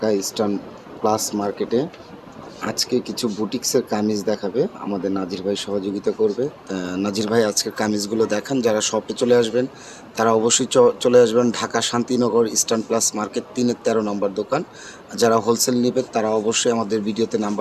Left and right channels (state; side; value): identical; both; correlation 1.00